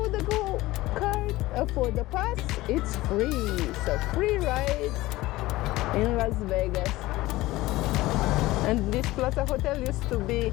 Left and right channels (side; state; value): right; quieter; 18.3 dB